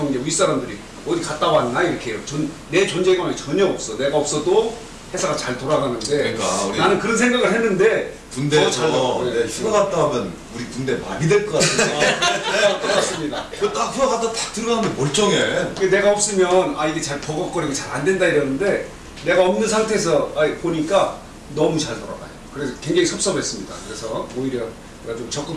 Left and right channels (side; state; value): both; identical; correlation 1.00